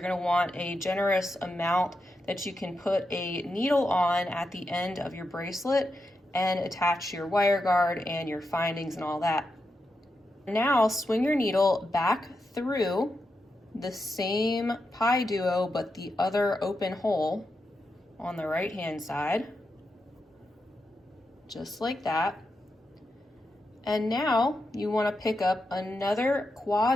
to want a generous amount that you can put a needle on at the end of your bracelet and attach your wire guard and your findings and all that. Now swing your needle back through the same PieDuo but the other open hole on the right hand side, just like that. And now you want to pick up another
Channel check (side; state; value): both; normal; correlation 0.86